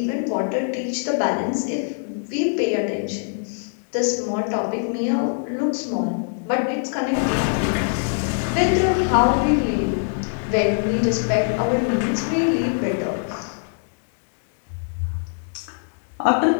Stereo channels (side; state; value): right; silent; 63 dB below the other